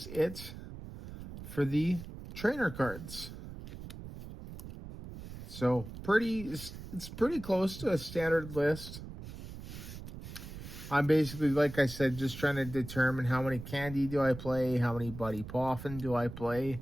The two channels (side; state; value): right; noise; rumble, 12 dB below the sound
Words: it for the trainer cards. So it's pretty close to a standard list. I'm basically, like I said, just trying to determine how many candy do I play, how many Buddy Poffin do I play,